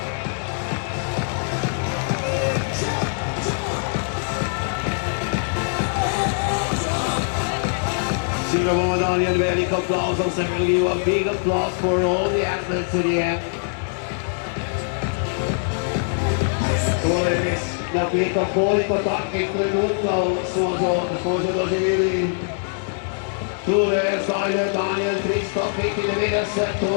Senior woman Daniel, very big applause. I'm going to give you a big applause for all the athletes to the end. La pietra polico tacchi creduto suoso dosi vili Tule Zajle Daniel Tristo Piti de vede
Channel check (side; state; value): right; silent; 64 dB below the other